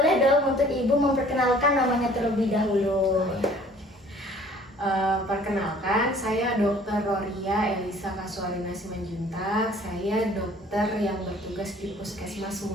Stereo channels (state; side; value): normal; both; correlation 0.53